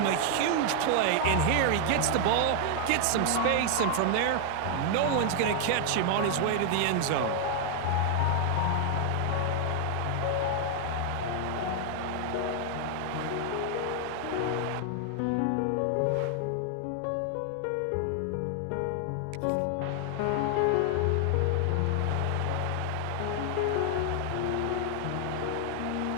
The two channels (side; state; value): both; different; correlation 0.00